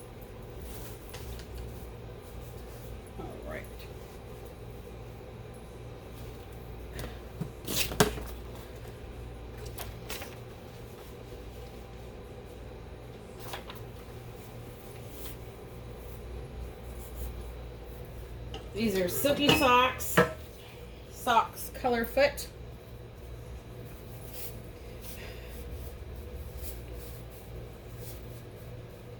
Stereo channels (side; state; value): both; identical; correlation 1.00